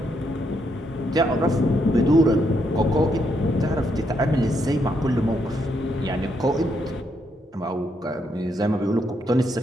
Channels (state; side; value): normal; both; correlation 0.77